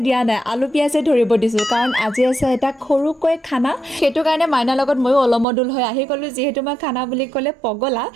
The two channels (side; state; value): left; drops out; at 5.5 s